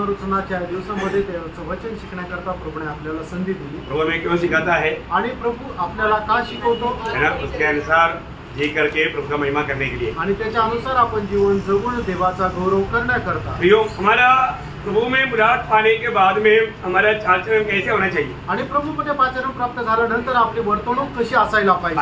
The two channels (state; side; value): identical; both; correlation 1.00